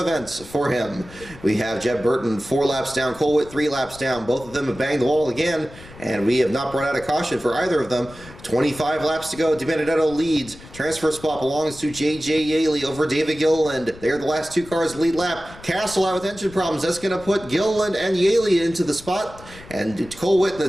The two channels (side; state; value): left; noise; rumble, 19 dB below the sound